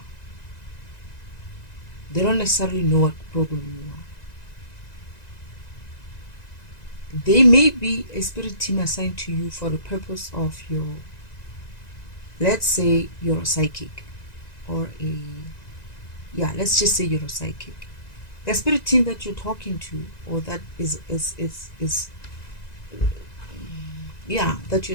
They don't necessarily know what program you are. They may be a spirit team assigned to you for the purpose of your, let's say you're a psychic, or let's just say you're a psychic. The spirit team that you're talking to, or that that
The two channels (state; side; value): late; right; 1.9 ms